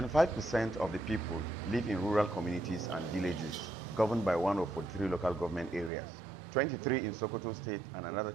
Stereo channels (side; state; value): left; drops out; at 5.9 s